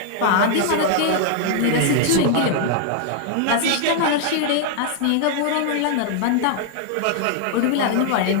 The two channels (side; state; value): both; different; correlation 0.00